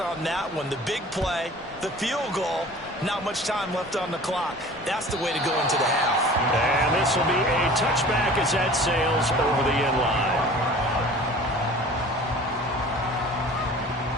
that one? The big play, the field goal, not much time left on the clock. That's the way to go into the half. And this will be a touchback as that sails over the end line.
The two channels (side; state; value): both; normal; correlation 0.44